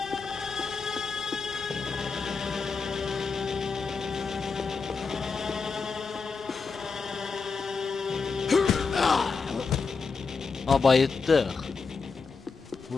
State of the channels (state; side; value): quieter; right; 4.9 dB